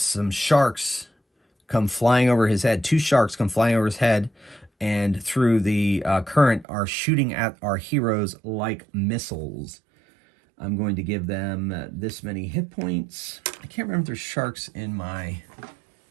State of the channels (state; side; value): drops out; left; at 6.7 s